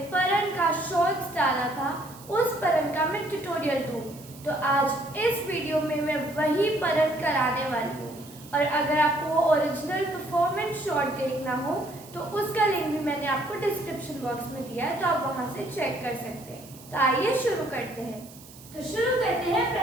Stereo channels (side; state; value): right; noise; hiss, 20 dB below the sound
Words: परन का शॉर्ट्स डाला था उस परन का मैं ट्यूटोरियल दूँ, तो आज इस वीडियो में मैं वही परन कराने वाली हूँ। और अगर आपको वो ओरिजिनल परफॉर्मेंस शॉट देखना हो तो उसका लिंक भी मैंने आपको डिस्क्रिप्शन बॉक्स में दिया है, तो आप वहाँ से चेक कर सकते हैं। तो आइए शुरू करते हैं। तो शुरू करते हैं